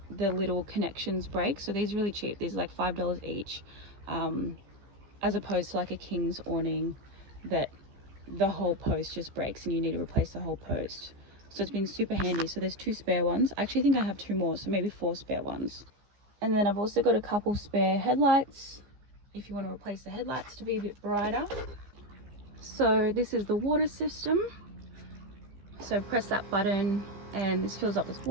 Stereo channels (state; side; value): late; left; 15 ms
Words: the little connections break. So these are really cheap. These are like $5 each, as opposed to like a King's awning that the whole post just breaks and you need to replace the whole post. So it's been super handy. So there's 2 spare ones. I actually think I have 2 more, so maybe 4 spare ones. And then I've also got a couple spare headlights if you want to replace the headlights to be a bit brighter. So this is the water system. So press that button and this fills up with